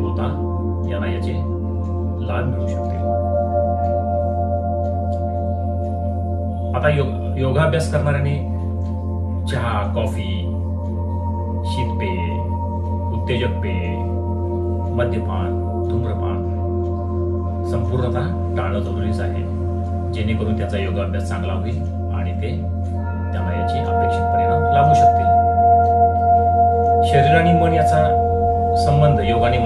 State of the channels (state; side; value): identical; both; correlation 1.00